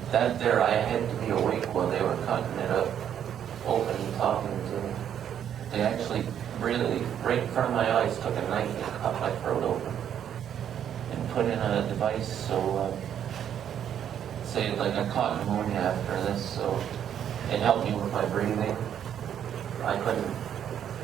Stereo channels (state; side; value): quieter; left; 9.4 dB